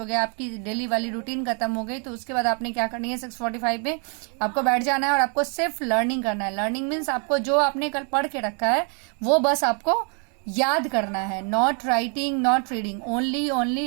गया, आपकी डेली वाली रूटीन खत्म हो गई। तो उसके बाद आपने क्या करनी है, 6:45 पे आपको बैठ जाना है और आपको सिर्फ लर्निंग करना है। लर्निंग मीन्स आपको जो आपने कल पढ़ के रखा है वो बस आपको याद करना है, not writing, not reading, only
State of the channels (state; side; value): quieter; left; 39.5 dB